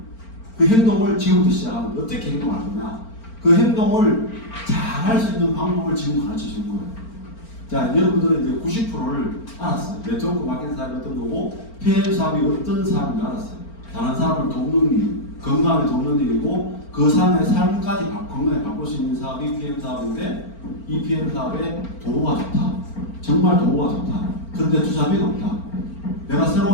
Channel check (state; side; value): late; right; 4.4 ms